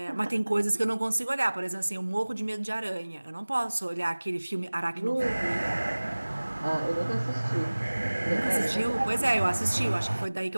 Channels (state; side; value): inverted; both; correlation -1.00